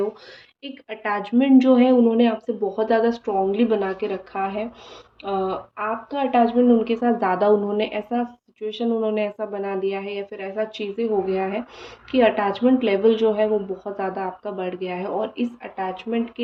एक अटैचमेंट जो है उन्होंने आपसे बहुत ज़्यादा स्ट्रॉन्गली बना के रखा है। आपका अटैचमेंट उनके साथ ज़्यादा, उन्होंने ऐसा सिचुएशन उन्होंने ऐसा बना दिया है, या फिर ऐसा चीज़ें हो गया है कि अटैचमेंट लेवल जो है वो बहुत ज़्यादा आपका बढ़ गया है, और इस अटैचमेंट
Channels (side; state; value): both; identical; correlation 1.00